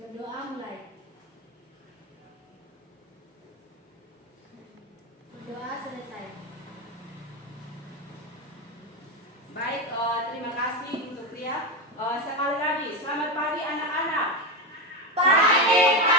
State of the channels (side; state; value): both; normal; correlation 0.13